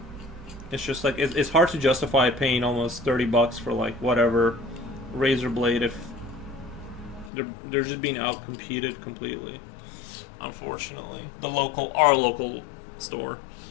it's just like it's hard to justify paying almost $30 for like whatever razor blade if they're just being out competed completely. Unfortunately, our local store,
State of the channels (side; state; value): right; drops out; at 7.3 s